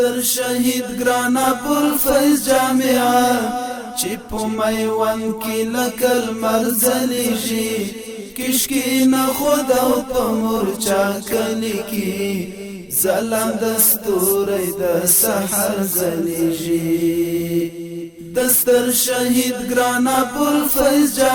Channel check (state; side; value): identical; both; correlation 1.00